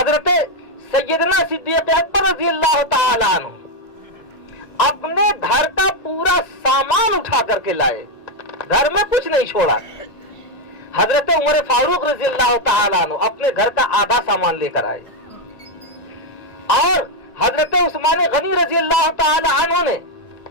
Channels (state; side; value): late; right; 1.9 ms